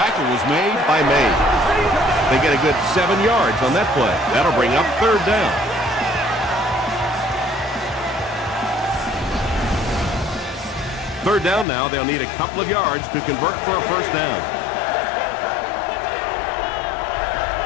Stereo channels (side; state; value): right; drops out; at 11.7 s